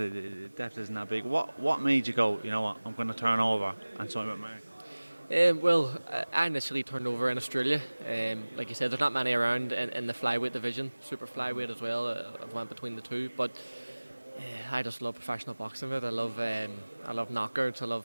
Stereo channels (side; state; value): both; inverted; correlation -1.00